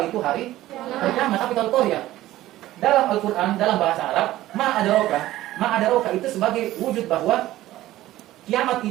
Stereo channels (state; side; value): quieter; left; 15.3 dB